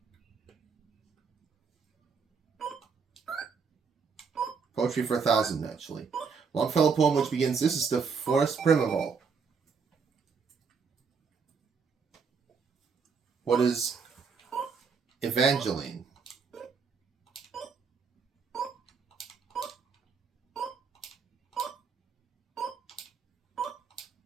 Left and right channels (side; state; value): left; quieter; 5.6 dB